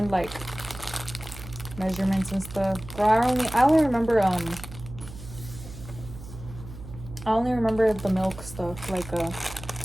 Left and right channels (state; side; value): noise; right; hum, 14 dB below the sound